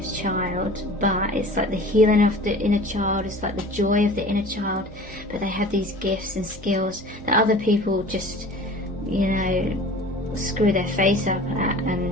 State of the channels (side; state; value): both; normal; correlation 0.42